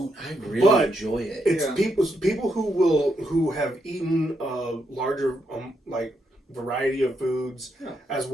I really enjoy it. It's people who have eaten a larger like variety of foods as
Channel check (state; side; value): normal; both; correlation 0.80